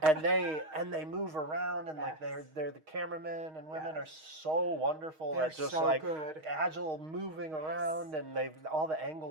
and they move around, and like Yes. they're the cameramen and women Yes. are so wonderful They're at just so like good. agile moving around, and all the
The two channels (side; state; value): left; late; 6.4 ms